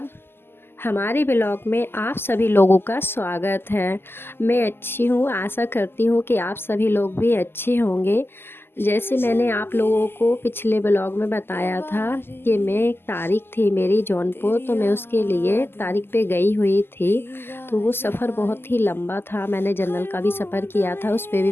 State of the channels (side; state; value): right; late; 0.11 ms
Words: हमारे blog में आप सभी लोगों का स्वागत है। मैं अच्छी हूँ, आशा करती हूँ कि आप सभी लोग भी अच्छे होंगे। जैसे मैंने आप लोगों को पिछले ब्लॉग में बताया था कि मैं एक तारीख थी मेरी जौनपुर, तो मैं उसके लिए तारीख पे गई हुई थी। तो वो सफ़र बहुत ही लंबा था। मैंने जनरल का भी सफ़र किया था, उस पे भी